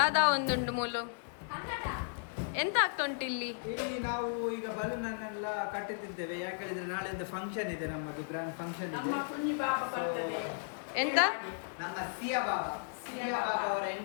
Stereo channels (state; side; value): silent; right; digital silence